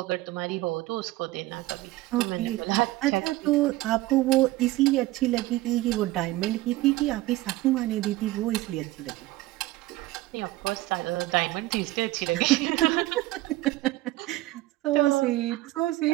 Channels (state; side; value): quieter; left; 17.9 dB